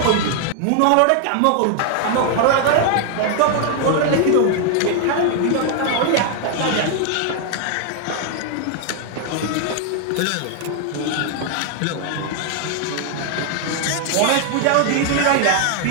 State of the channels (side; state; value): both; different; correlation 0.00